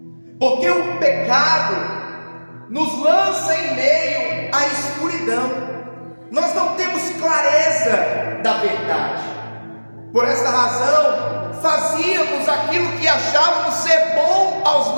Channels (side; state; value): both; inverted; correlation -1.00